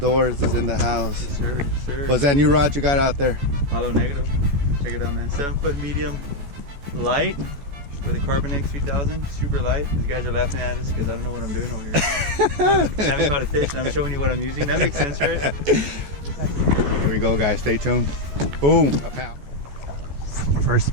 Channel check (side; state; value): left; late; 14 ms